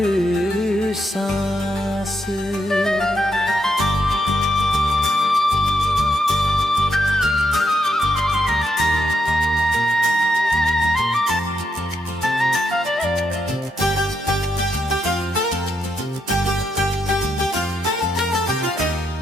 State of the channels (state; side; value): normal; both; correlation 0.80